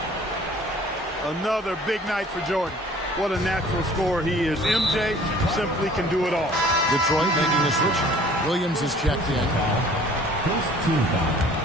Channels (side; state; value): both; normal; correlation 0.52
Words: Another big night for Jordan. What a natural scorer he is. MJ simply can do it all. Detroit making a switch. Williams is checked in. First team foul.